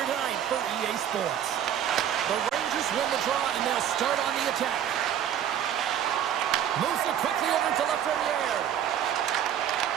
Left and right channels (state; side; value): quieter; left; 9.9 dB